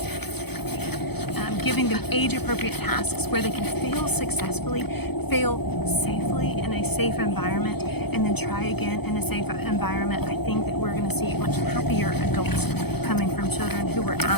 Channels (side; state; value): right; late; 0.97 ms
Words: giving them age-appropriate tasks where they can fail successfully, fail safely in a safe environment, and then try again in a safe environment. I think that we're going to see much happier adults coming from children who were